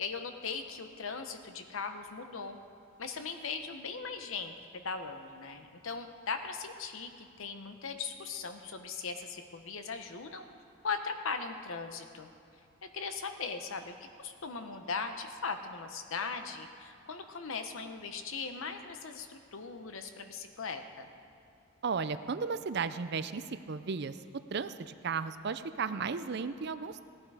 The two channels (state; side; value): normal; both; correlation -0.11